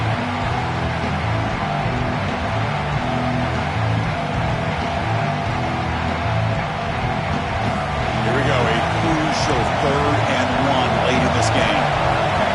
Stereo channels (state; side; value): identical; both; correlation 1.00